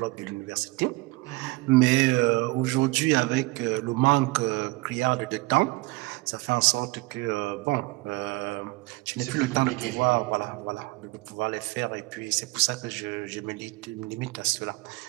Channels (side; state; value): left; quieter; 23.2 dB